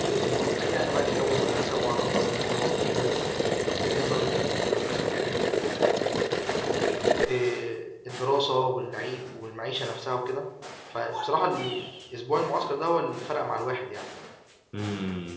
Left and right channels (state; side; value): identical; both; correlation 1.00